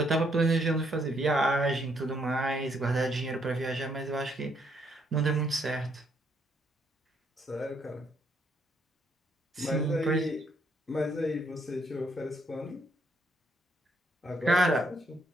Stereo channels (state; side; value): normal; both; correlation 0.71